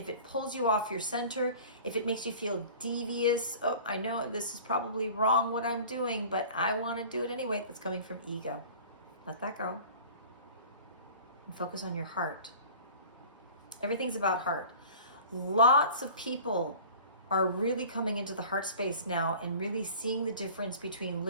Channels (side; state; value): both; inverted; correlation -0.43